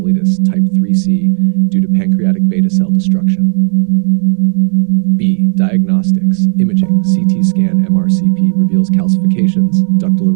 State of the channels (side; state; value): left; silent; 58 dB below the other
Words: type 3C due to pancreatic beta cell destruction. B. Diagnostics, Diagnostics, imaging, CT scan, MRCP reveals calcifications, ductal